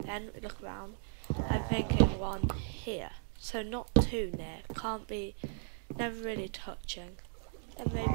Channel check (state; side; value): silent; left; digital silence